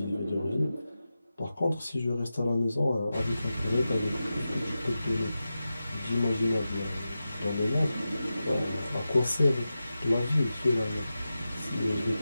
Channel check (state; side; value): inverted; both; correlation -0.93